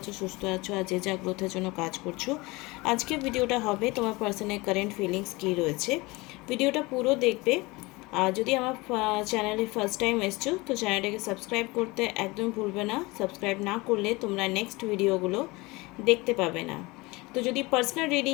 সুস্থ আছো আর যে যা গ্রোথের জন্য কাজ করছো। আজকে ভিডিওটা হবে তোমার পার্সোনাল কারেন্ট ফিলিংস কী রয়েছে। ভিডিওটা পুরো দেখবে। আর যদি আমার চ্যানেলে ফার্স্ট টাইম এসছো তো চ্যানেলটাকে সাবস্ক্রাইব করতে একদম ভুলবে না। সাবস্ক্রাইব না করলে তোমরা নেক্সট ভিডিওগুলো দেখতে পাবে না। তো যদি পার্সোনাল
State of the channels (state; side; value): quieter; right; 23.3 dB